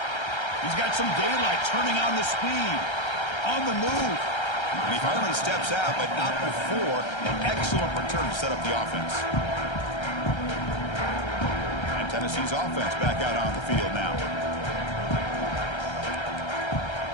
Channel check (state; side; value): late; right; 1.3 ms